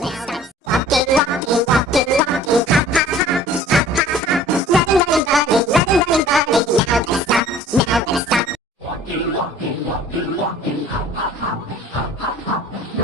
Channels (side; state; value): both; normal; correlation 0.49